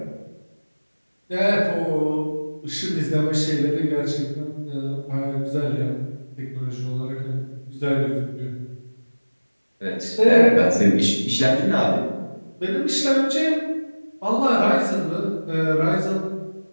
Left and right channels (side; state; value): both; inverted; correlation -1.00